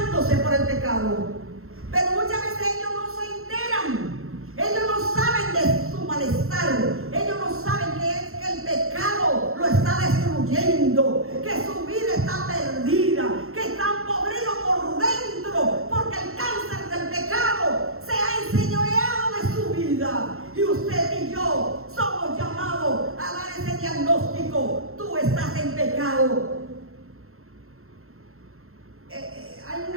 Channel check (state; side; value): late; left; 0.62 ms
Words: por el pecado, pero muchas veces ellos no se enteran, ellos no saben de su malestar, ellos no saben que el pecado lo está destruyendo, que su vida está perdida, que están podridos por dentro, porque el cáncer del pecado se ha enseñoreado de su vida. Y usted y yo somos llamados a dar ese diagnóstico: tú estás en pecado. Hay